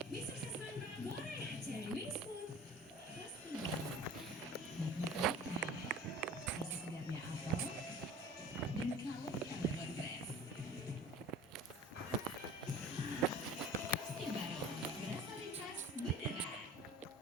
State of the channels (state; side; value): normal; both; correlation 0.43